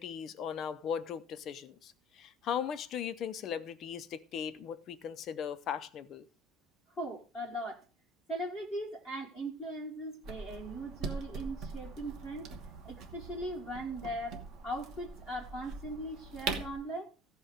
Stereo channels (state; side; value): normal; both; correlation 0.49